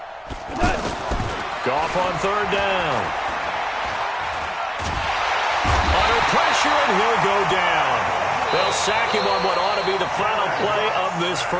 Goff on third down. Under pressure, and he'll go down. They'll sack him on what ought to be the final play of this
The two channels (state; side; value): identical; both; correlation 1.00